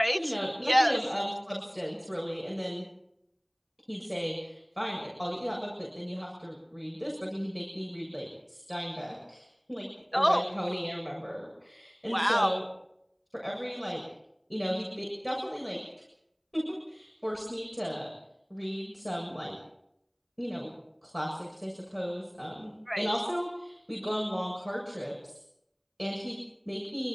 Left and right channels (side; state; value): both; identical; correlation 1.00